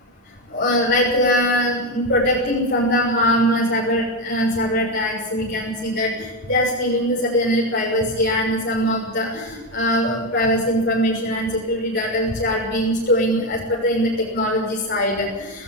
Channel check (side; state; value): both; normal; correlation 0.11